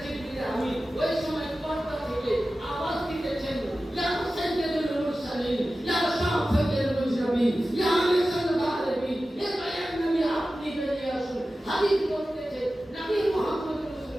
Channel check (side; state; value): both; normal; correlation 0.95